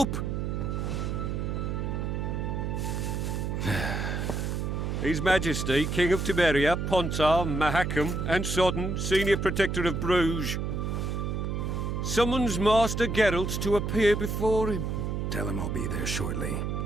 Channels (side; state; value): right; noise; hum, 1 dB below the sound